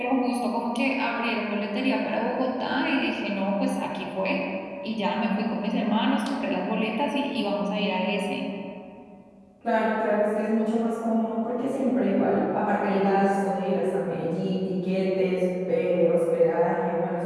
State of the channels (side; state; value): both; identical; correlation 1.00